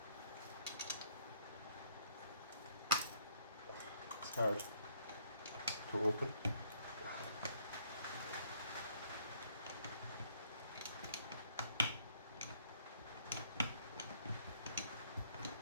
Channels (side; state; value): both; inverted; correlation -0.65